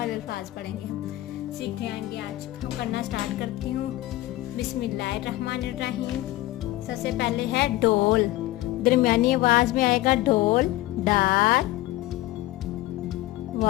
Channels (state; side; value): quieter; right; 16.9 dB